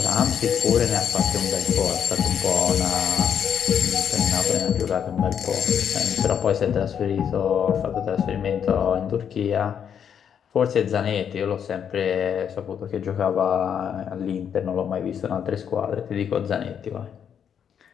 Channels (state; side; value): quieter; right; 8.2 dB